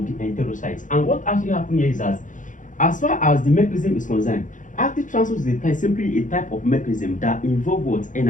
enterocytes. And what actually happened here is that, as far as the mechanism is concerned, active transport is simply a type of mechanism that involves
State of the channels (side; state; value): right; late; 0.37 ms